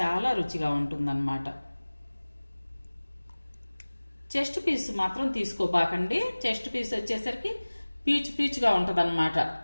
రుచిగా ఉంటుందన్నమాట. చెస్ట్ పీస్ మాత్రం తీసుకోబాకండి. చెస్ట్ పీస్ వచ్చేసరికి పీచు పీచుగా ఉంటదన్నమాట.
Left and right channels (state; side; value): inverted; both; correlation -1.00